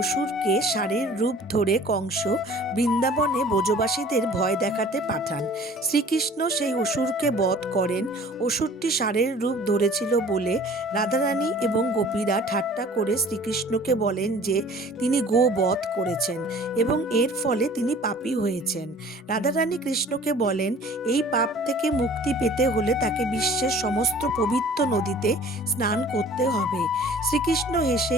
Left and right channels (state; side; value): normal; both; correlation 0.48